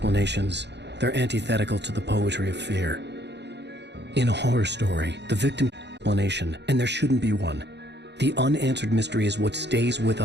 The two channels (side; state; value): left; late; 0.50 ms